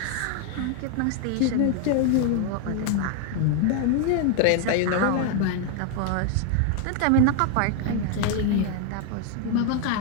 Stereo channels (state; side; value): different; both; correlation 0.00